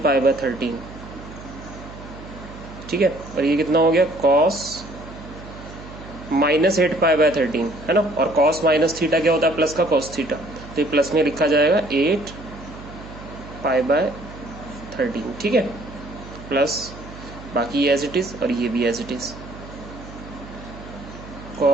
पाई बाय 13। ठीक है, और ये कितना हो गया cos माइनस 8 पाई बाय 13, है ना। और cos माइनस थीटा क्या होता है? प्लस का cos थीटा, तो ये प्लस में लिखा जाएगा 8 पाई बाय 13। ठीक है, प्लस बाकी एज इट इज और ये भी as it is,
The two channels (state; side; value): noise; right; hum, 15 dB below the sound